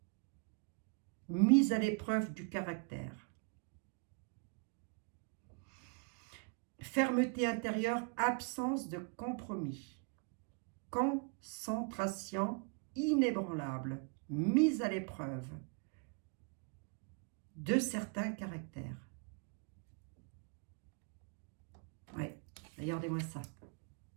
Mise à l'épreuve du caractère. Fermeté intérieure, absence de compromis. Concentration inébranlable, mise à l'épreuve de certains caractères. Oui, regardez-moi ça.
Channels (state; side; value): quieter; left; 35.4 dB